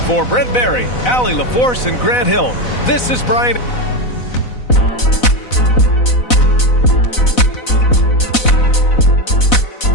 For Brent Barry, Allie LaForce, and Grant Hill, this is Brian.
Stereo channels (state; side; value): late; right; 4.0 ms